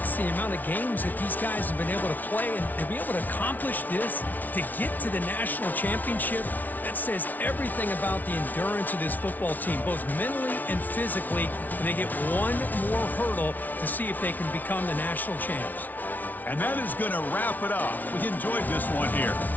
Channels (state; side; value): late; right; 0.080 ms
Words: the amount of games that these guys have been able to play, and to be able to accomplish this, to get to the national championship, that says everything about the endurance of this football team, both mentally and physically, and they get one more hurdle to see if they can become the national champs. And that is going to wrap it up. We enjoyed this one here.